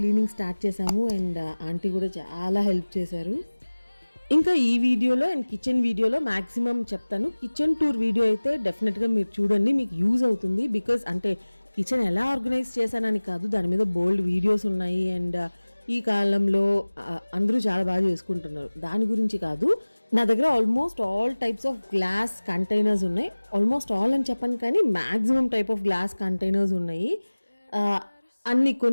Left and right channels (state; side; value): inverted; both; correlation -1.00